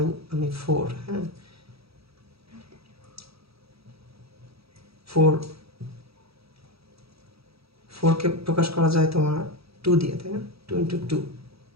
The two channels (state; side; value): late; left; 0.77 ms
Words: আমি 4, হ্যাঁ, 4 কে প্রকাশ করা যায় তোমার 2 দিয়ে, তাই না? 2 × 2,